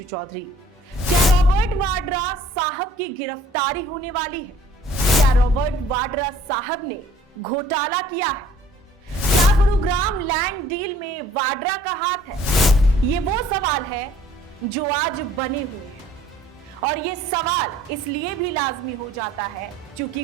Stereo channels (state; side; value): normal; both; correlation 0.55